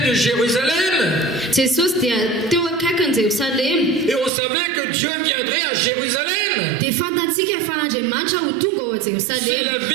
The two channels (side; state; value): left; drops out; at 4.3 s